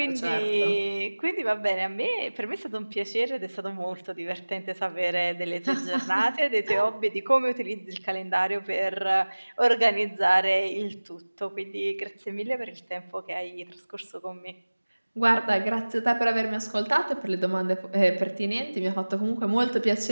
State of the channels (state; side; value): inverted; both; correlation -1.00